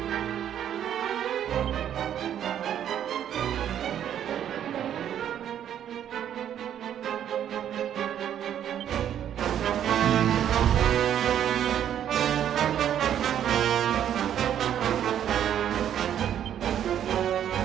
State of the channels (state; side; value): quieter; left; 10.0 dB